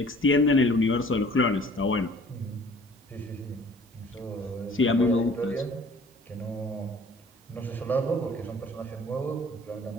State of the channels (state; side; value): normal; both; correlation 0.51